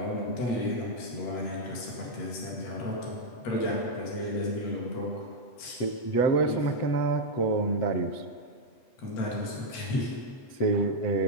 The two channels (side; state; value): right; late; 8.0 ms